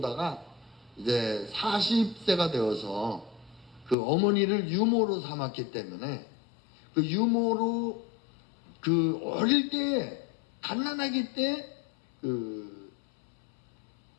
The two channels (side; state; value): right; drops out; at 4.0 s